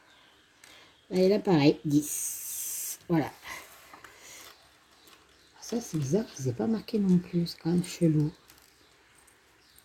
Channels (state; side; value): identical; both; correlation 1.00